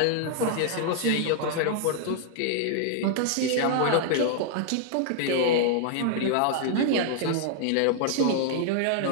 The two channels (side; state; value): both; different; correlation 0.00